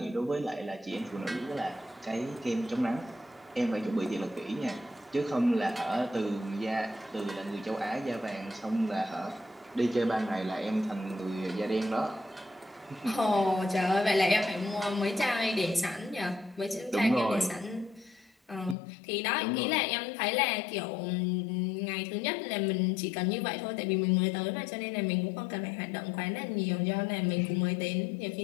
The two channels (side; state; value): right; drops out; at 18.8 s